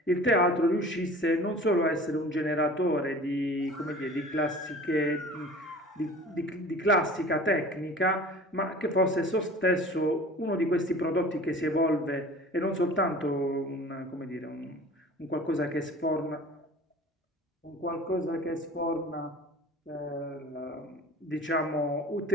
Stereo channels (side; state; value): both; normal; correlation 0.43